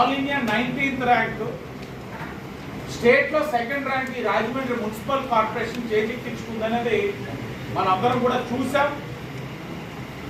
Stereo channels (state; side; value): identical; both; correlation 1.00